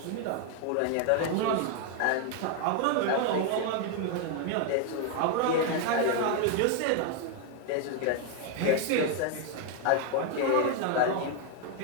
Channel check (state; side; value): different; both; correlation 0.00